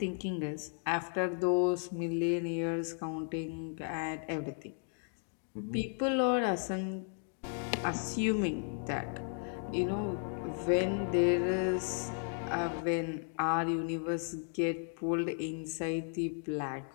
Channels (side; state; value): right; silent; 55 dB below the other